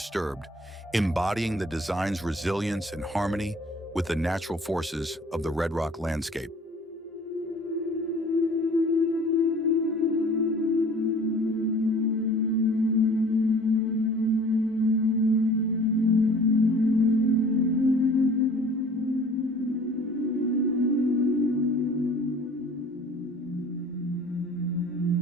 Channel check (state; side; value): normal; both; correlation 0.49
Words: embodying the design's resilience and harmony with the natural forces of the Red Rock landscape.